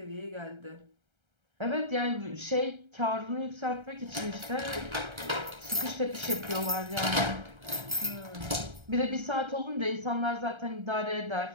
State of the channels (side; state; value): left; late; 1.3 ms